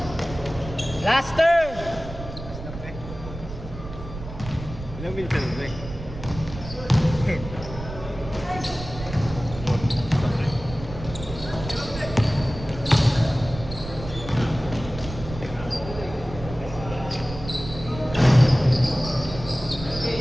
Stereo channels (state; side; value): noise; right; rumble, 11 dB below the sound